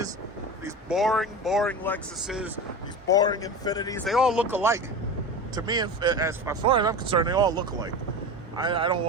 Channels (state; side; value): normal; both; correlation 0.28